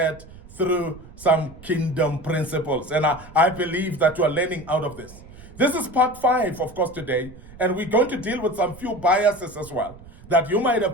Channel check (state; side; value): noise; right; rumble, 19 dB below the sound